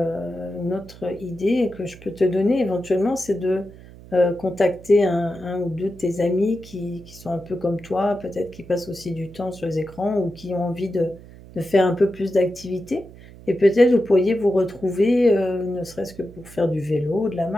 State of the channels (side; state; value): right; noise; hum, 19 dB below the sound